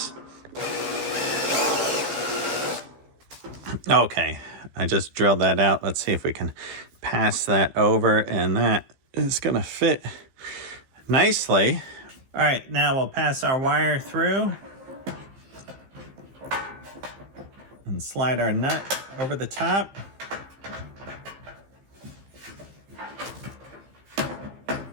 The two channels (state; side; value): late; left; 15 ms